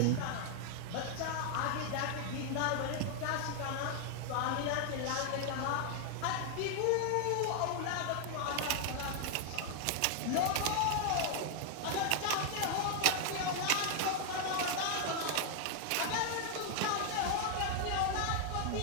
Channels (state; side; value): different; both; correlation 0.00